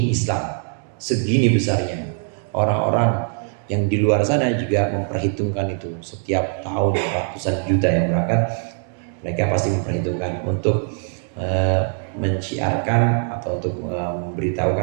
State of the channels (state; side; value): silent; left; 55 dB below the other